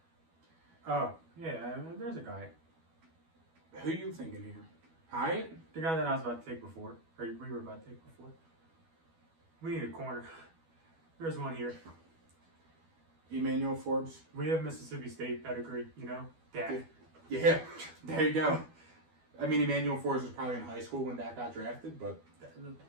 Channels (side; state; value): left; late; 12 ms